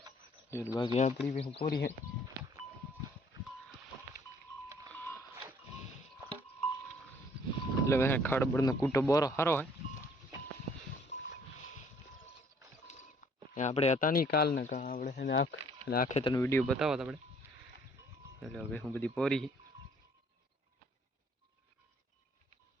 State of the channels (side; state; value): both; normal; correlation 0.60